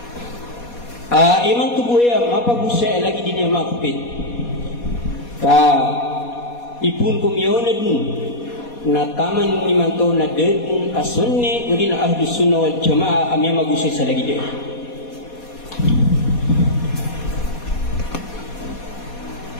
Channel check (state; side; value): late; right; 4.2 ms